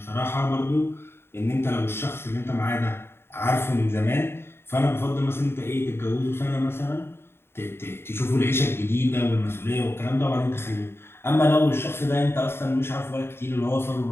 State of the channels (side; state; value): right; late; 0.11 ms